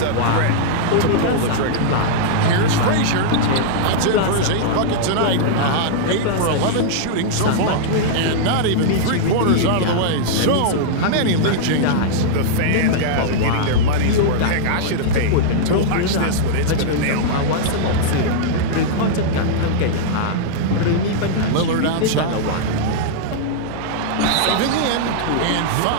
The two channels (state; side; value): different; both; correlation -0.02